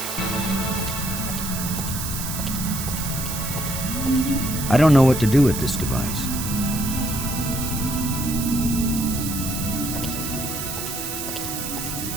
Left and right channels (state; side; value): noise; right; hiss, 5 dB below the sound